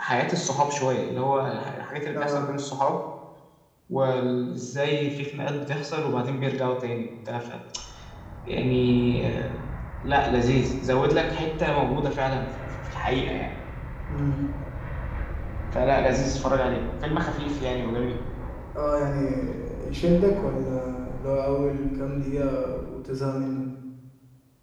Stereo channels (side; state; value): both; identical; correlation 1.00